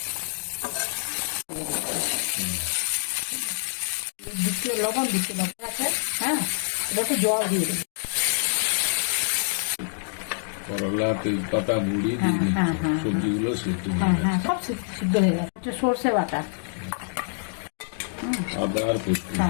দিচ্ছি লবণ, দিচ্ছি আছে। হ্যাঁ, এটা একটু জল দিয়ে দেবো। করলা, তেজপাতা, মুড়ি, হ্যাঁ, হ্যাঁ, হ্যাঁ, সবজিগুলো সিদ্ধ হ্যাঁ হ্যাঁ, সব সিদ্ধ হয়ে গেছে। একটু সর্ষে বাটা, আদা আর পোস্ত।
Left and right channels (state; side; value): silent; right; digital silence